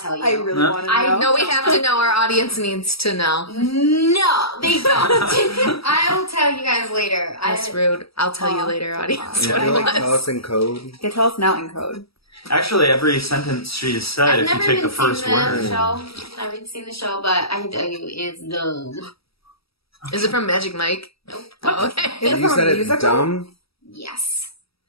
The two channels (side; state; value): right; late; 0.76 ms